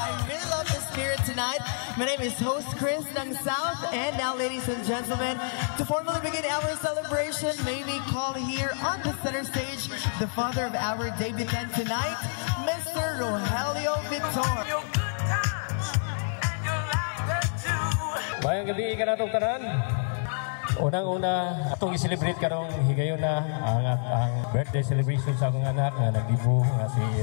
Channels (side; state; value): right; silent; 59 dB below the other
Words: really love the spirit tonight. My name is Host Chris ng South, and now, ladies and gentlemen, to formally begin our celebration, may we call here on the center stage the father of our debutant tonight, Mr. Rogelio Vitor. Mayang gabi ka na itong tanan. Unang-una, itong i-celebrate karong higayon na ang birthday celebration sa akong anak na nag-ibu nga si